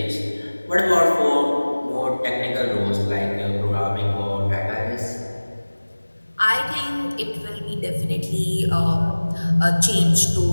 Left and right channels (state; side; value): inverted; both; correlation -1.00